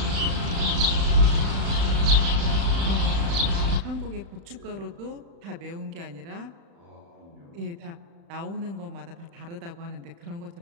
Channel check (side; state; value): left; late; 35 ms